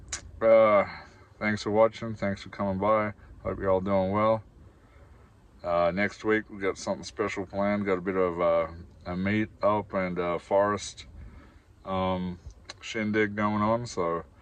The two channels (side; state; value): both; identical; correlation 1.00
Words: Thanks for watching. Thanks for coming by. Hope you're all doing well. Next week we got something special planned. Got a bit of a meet up and forest shindig going on, so